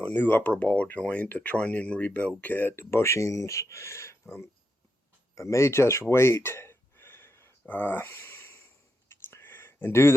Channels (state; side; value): normal; both; correlation 0.84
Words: new upper ball joint, the trunnion rebuild kit, the bushings. I may just wait and do